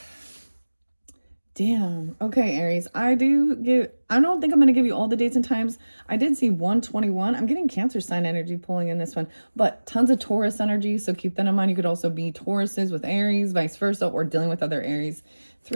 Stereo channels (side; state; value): both; inverted; correlation -1.00